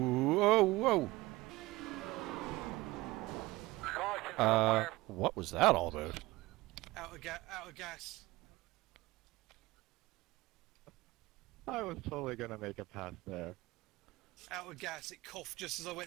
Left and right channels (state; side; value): quieter; left; 20.0 dB